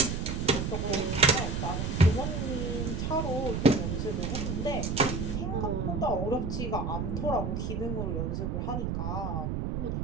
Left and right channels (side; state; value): right; noise; rumble, 1 dB below the sound